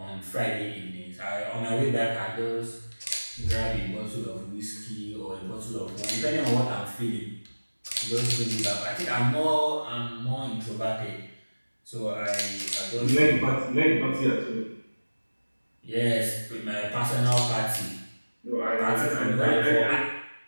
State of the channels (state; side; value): inverted; both; correlation -1.00